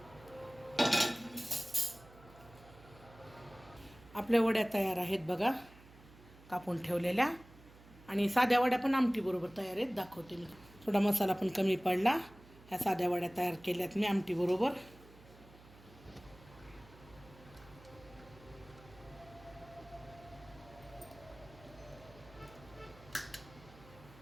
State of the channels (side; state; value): right; noise; hum, 22 dB below the sound